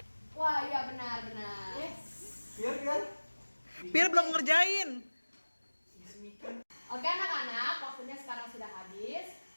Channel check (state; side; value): inverted; both; correlation -1.00